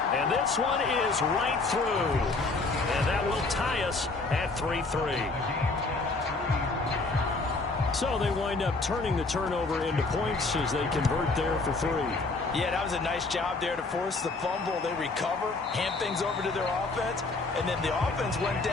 And this one is right through. And that will tie us at 3-3. So they wind up turning the turnover into points as they convert there for 3. Yeah, that was a nice job there to force the fumble. They recover, hand things over to their offense, and then the offense went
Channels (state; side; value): quieter; right; 3.6 dB